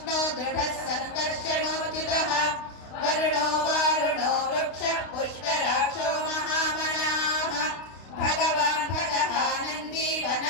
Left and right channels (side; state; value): right; late; 32 ms